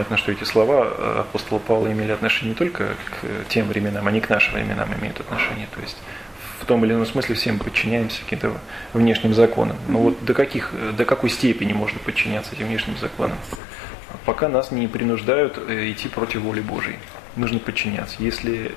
что эти слова апостола Павла имели отношение не только к тем временам, они к нашим временам имеют отношение. То есть в том или ином смысле все мы подчиняемся каким-то внешним законам. Но вот до какой степени можно подчиняться этим внешним законам? Пока нас не принуждают идти против воли Божией. Нужно подчиняться. Если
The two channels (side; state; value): right; drops out; at 13.6 s